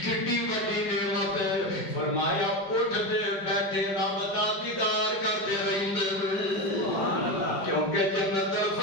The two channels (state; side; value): late; right; 5.2 ms